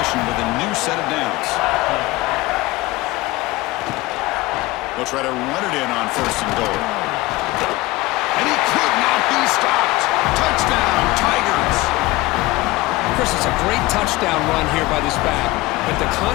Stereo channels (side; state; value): right; quieter; 20.2 dB